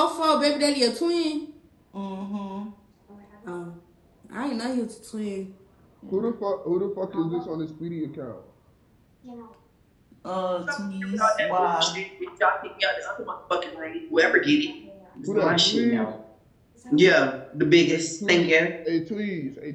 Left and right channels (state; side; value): identical; both; correlation 1.00